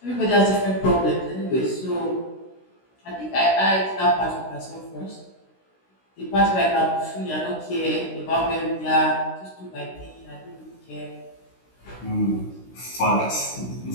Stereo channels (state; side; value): late; right; 16 ms